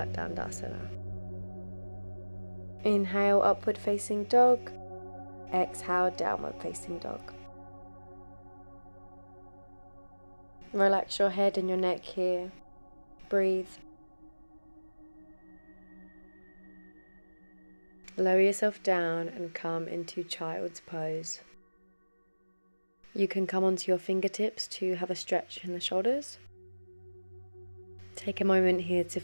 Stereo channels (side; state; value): both; inverted; correlation -1.00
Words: Dandasana. Inhale, upward facing dog. Exhale, downward facing dog. Relax your head and your neck here. Breathe. Lower yourself down and come into child's pose. You can come onto your fingertips to have a stretch in the shoulders. Take a moment here to